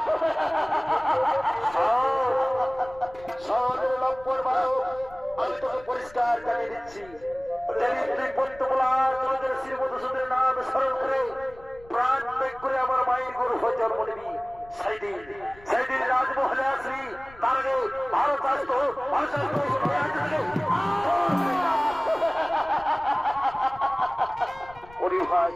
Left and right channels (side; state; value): left; noise; rumble, 22 dB below the sound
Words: শহরের লম্পট বালক, আমি তোকে পরিষ্কার জানিয়ে দিচ্ছি, তুই পদ্মপলার তোদের শ্রী মধুসূদনের নাম স্মরণ করে প্রাণ ত্যাগ করে আমার মায়ের গর্ভ জন্ম নিবি, সেদিন রাজমহলে আসবি। তার আগে ভারত আসতো